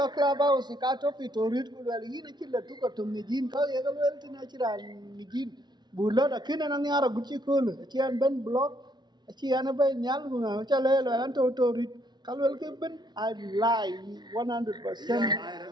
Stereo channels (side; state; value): left; late; 0.20 ms